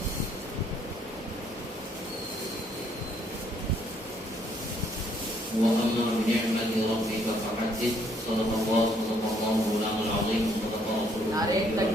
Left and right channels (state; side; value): normal; both; correlation 0.67